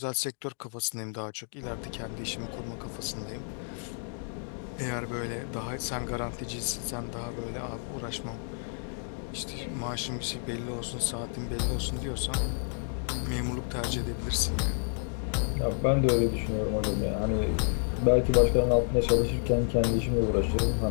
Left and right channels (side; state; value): right; silent; 58 dB below the other